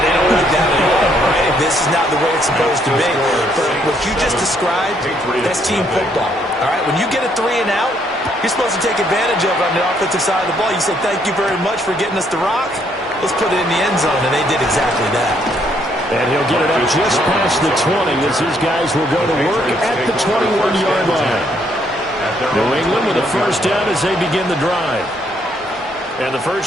they don't like that at all, right? This is not the way it's supposed to be. But what you just described, that's team football, all right? When you get a 3 and out, you're supposed to take advantage of it on the offensive side of the ball. You say, thank you very much for getting us the rock. Let's put it in the end zone, and they did exactly that. And he'll get it up just past the 20 as his guys will go to work at the 21-yard line. New England with a first down as they begin the drive. And the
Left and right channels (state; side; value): normal; both; correlation 0.70